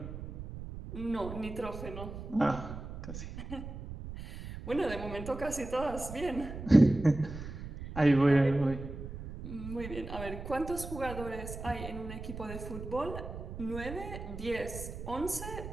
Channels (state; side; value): noise; right; rumble, 9 dB below the sound